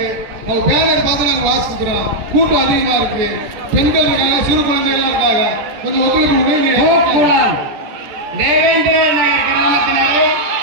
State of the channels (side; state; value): left; late; 14 ms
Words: அவங்க பேனர் பார்த்து நாங்க வாசிக்கிறோம். கூட்டம் அதிகமா இருக்கு. பெண்கள் இருக்காங்க, சிறு குழந்தைகள் இருக்காங்க. கொஞ்சம் ஒத்துழைப்பு கொடுங்க. தேவேந்திர நகர் கிராமத்தினரை